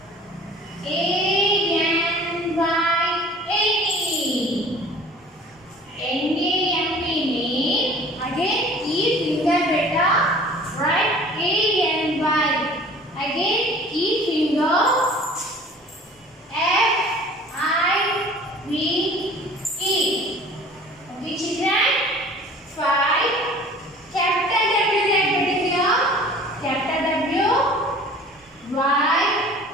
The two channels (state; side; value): normal; both; correlation 0.47